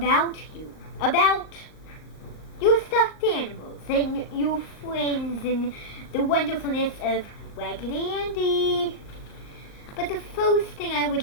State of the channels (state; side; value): late; right; 38 ms